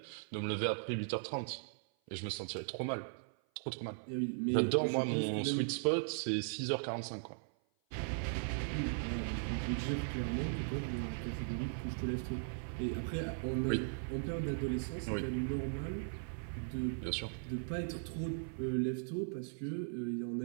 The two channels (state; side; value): silent; left; 52 dB below the other